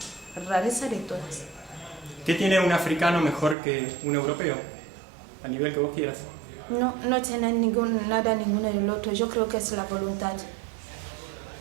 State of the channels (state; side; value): drops out; left; at 3.6 s